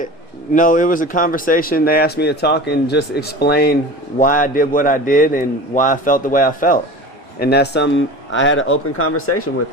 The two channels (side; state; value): both; normal; correlation 0.35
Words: No, it was a conversation. They asked me to talk and just explain why I did what I did and why I felt the way I felt. And that's I had an open conversation with